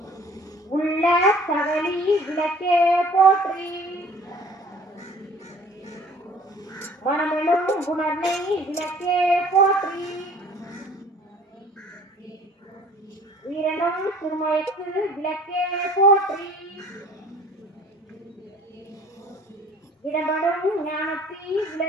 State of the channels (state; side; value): normal; both; correlation 0.50